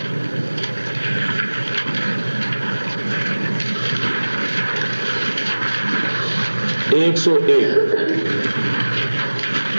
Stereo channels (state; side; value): inverted; both; correlation -1.00